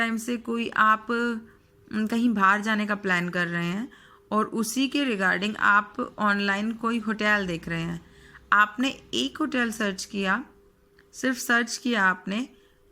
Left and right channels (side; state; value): both; identical; correlation 1.00